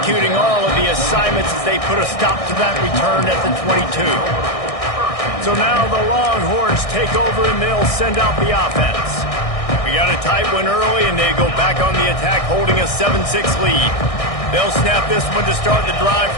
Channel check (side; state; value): right; late; 1.6 ms